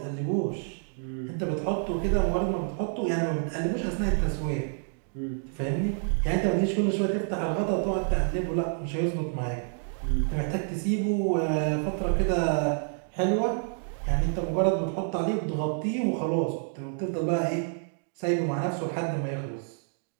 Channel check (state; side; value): silent; left; 59 dB below the other